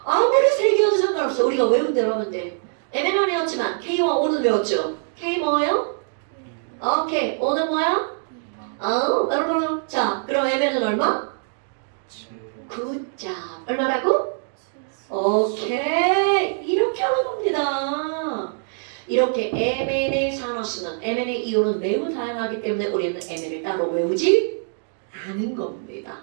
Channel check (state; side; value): silent; left; digital silence